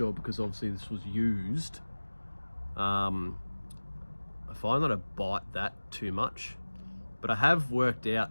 because obviously this was used. I find that I bite that too much, but I have worked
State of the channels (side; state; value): both; inverted; correlation -1.00